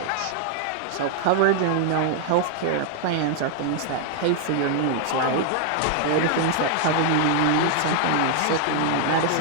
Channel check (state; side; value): different; both; correlation 0.00